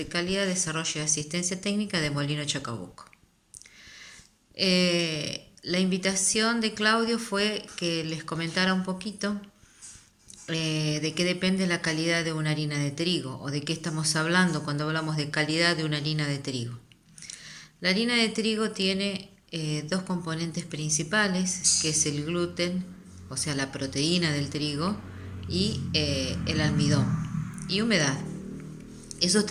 Calidad, Desarrollo y Asistencia Técnica de Molino Chacabuco. La invitación de Claudio fue que les comentara un poquito de qué depende la calidad de una harina de trigo o de qué estamos hablando cuando hablamos de calidad de una harina de trigo. La harina de trigo tiene dos componentes principales, que es el gluten, o sea la proteína del trigo, y el almidón y humedad. Esos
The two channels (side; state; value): both; identical; correlation 1.00